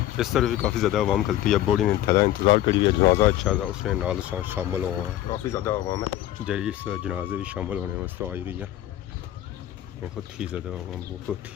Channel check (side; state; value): right; quieter; 13.4 dB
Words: इस तरह भी काफ़ी ज़्यादा आवाम खलती है। बॉडी ने थैला इंतज़ार करी हुई है, जनाजा अच्छा था उसने नाल शामिल हुआ है। काफ़ी ज़्यादा आवाम है जी इस जनाजे भी शामिल होने वास्ते आई रही है। बहुत ही ज़्यादा आवाम, बहुत